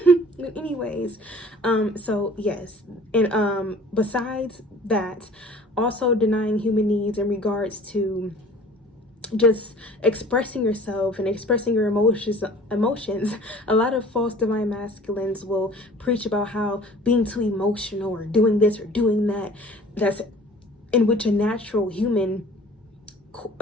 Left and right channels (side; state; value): both; normal; correlation 0.48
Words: But anyways, so yes, and besides that, also denying human needs in regards to just expressing yourself and expressing your emotions. A lot of false divine masculines will preach about how being too emotional or doing this or doing that, that's in which a natural human